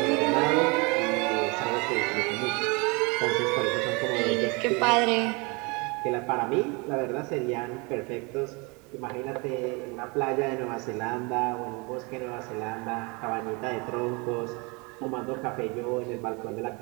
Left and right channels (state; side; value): quieter; left; 29.0 dB